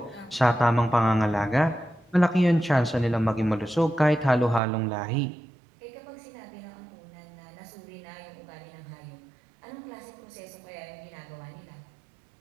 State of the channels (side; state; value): left; drops out; at 4.6 s